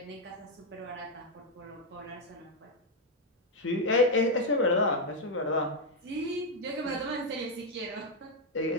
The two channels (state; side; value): normal; both; correlation 0.01